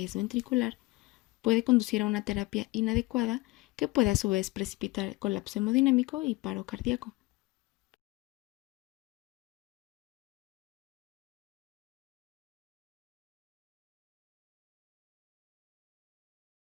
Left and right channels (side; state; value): right; quieter; 21.2 dB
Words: ventricular puede conducir a una terapia inadecuada que puede a su vez precipitar colapso hemodinámico y paro cardíaco.